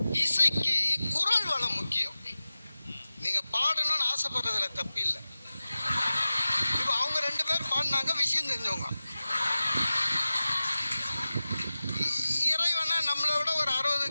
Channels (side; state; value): both; inverted; correlation -0.96